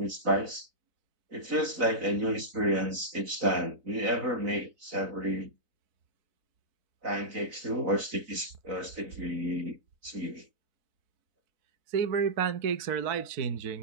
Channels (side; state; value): left; late; 4.0 ms